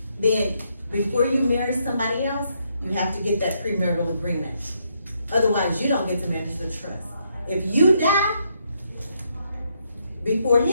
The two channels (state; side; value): inverted; both; correlation -0.75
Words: then Before you marry somebody else, you have to get that premarital agreement. Otherwise, you don't get to manage the trust. If you die before